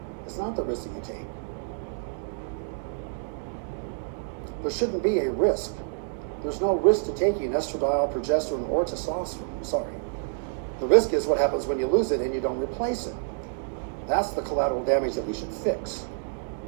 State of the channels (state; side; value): silent; left; digital silence